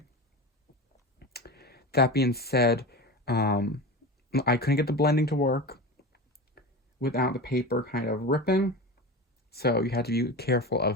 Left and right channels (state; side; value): normal; both; correlation 0.27